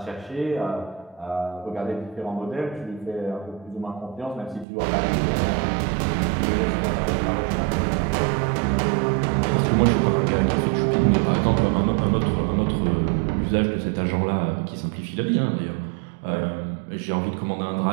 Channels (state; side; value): drops out; left; at 4.7 s